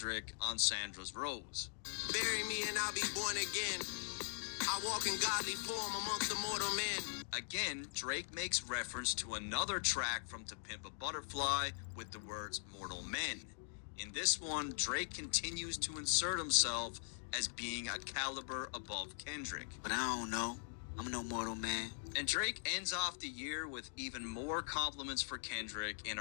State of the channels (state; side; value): silent; right; digital silence